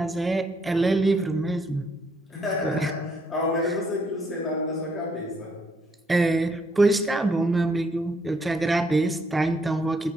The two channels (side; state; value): both; normal; correlation 0.72